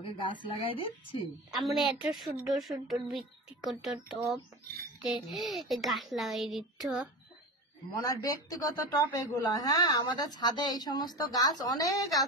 গাছ লাগাই দিচ্ছি। আমরা এত সুন্দর সুন্দর ব্যক্তিগত টপ গাছ লাগাই দিচ্ছ। মনার ব্যক্তিগত টপ এগুলা। হ্যাঁ, আমাদের ছাদে এই সমস্ত গাছ অনেক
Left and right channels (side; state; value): both; normal; correlation 0.28